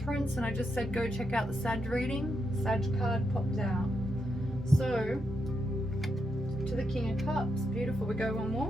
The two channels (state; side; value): normal; both; correlation 0.82